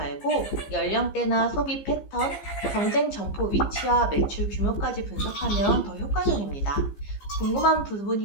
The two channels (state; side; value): late; right; 15 ms